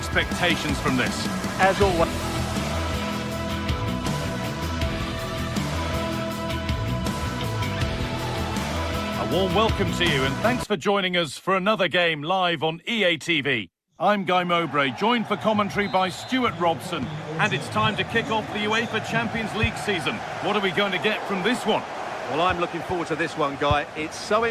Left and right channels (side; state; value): both; identical; correlation 1.00